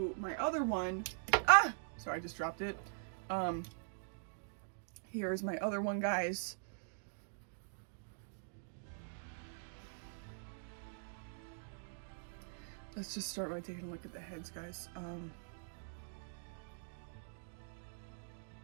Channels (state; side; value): silent; left; digital silence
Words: my other one. Ah! Sorry, I just dropped it. Here's my other one, guys. Let's just start by taking a look at the heads, guys.